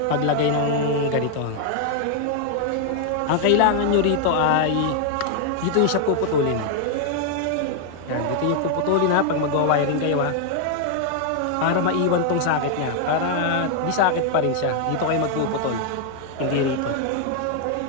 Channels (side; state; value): both; different; correlation 0.00